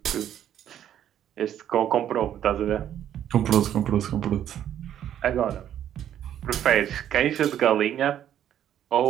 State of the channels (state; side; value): quieter; left; 10.6 dB